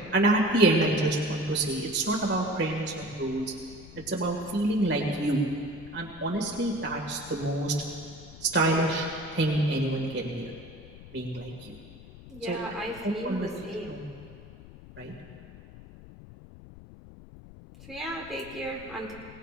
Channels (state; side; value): noise; left; rumble, 17 dB below the sound